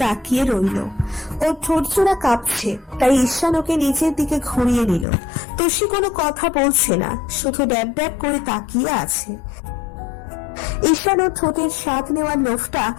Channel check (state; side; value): drops out; right; at 5.1 s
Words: তাকিয়ে রইল। ওর ঠোঁটজোড়া কাঁপছে, তাই ঈশান ওকে নিজের দিকে ঘুরিয়ে নিল। তুষি কোনো কথা বলছে না, শুধু ড্যাব ড্যাব করে তাকিয়ে আছে। ঈশান ওর ঠোঁটের স্বাদ নেওয়ার লোভটা